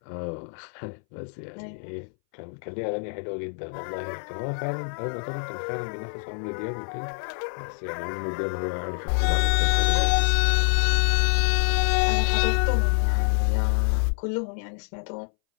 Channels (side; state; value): right; silent; 61 dB below the other